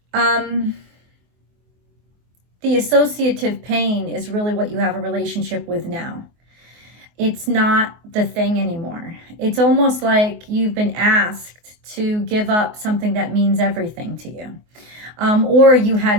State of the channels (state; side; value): late; left; 24 ms